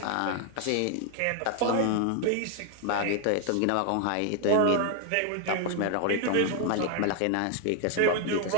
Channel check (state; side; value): different; both; correlation 0.01